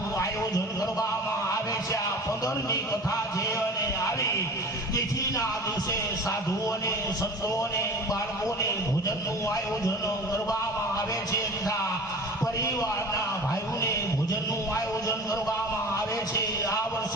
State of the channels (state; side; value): normal; both; correlation 0.38